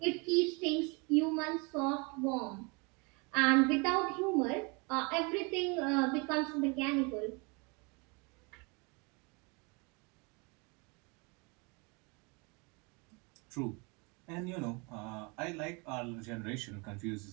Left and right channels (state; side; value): quieter; left; 30.5 dB